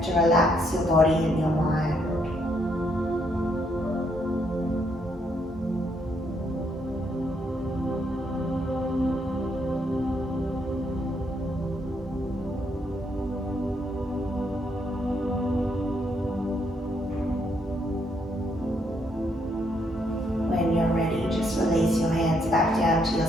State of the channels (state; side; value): normal; both; correlation 0.73